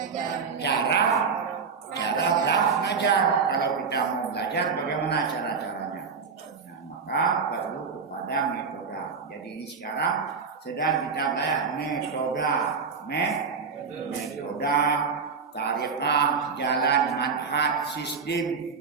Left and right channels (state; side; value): quieter; left; 5.5 dB